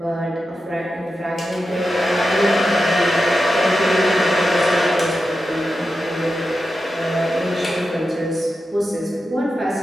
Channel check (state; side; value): normal; both; correlation 0.90